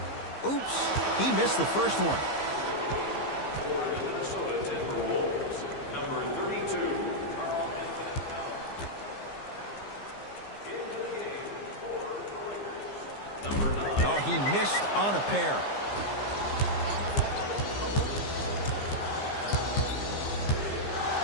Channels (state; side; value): late; right; 15 ms